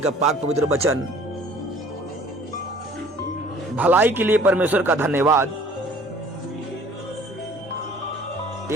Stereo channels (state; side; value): normal; both; correlation 0.52